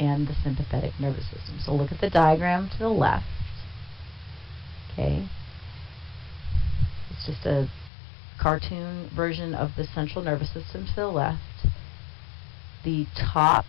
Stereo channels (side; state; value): right; drops out; at 7.9 s